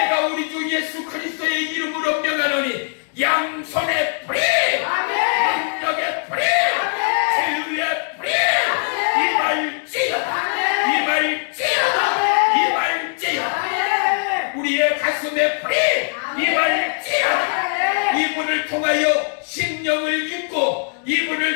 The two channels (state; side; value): silent; right; 59 dB below the other